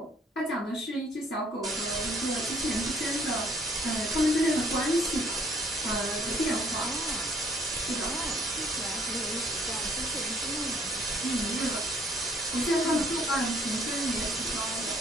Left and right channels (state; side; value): normal; both; correlation 0.61